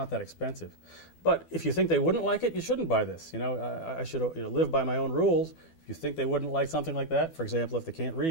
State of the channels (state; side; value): late; right; 12 ms